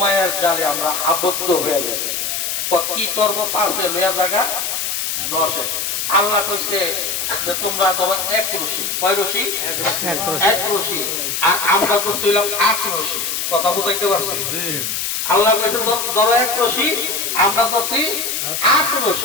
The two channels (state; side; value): noise; left; hiss, 2 dB below the sound